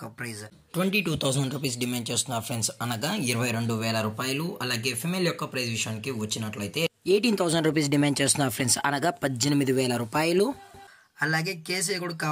ప్రైజ్ 22,000 రూపీస్ డిమాండ్ చేస్తున్నారు ఫ్రెండ్స్, అనగా 22,000 రూపాయలు. అలాగే ఫిమేల్ యొక్క ప్రైజ్ విషయానికి వచ్చినట్లయితే 18,000 రూపీస్ డిమాండ్ చేస్తున్నారు ఫ్రెండ్స్, అనగా 18,000 రూపాయలు. అలాగే కేసీ కూడా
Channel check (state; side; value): identical; both; correlation 1.00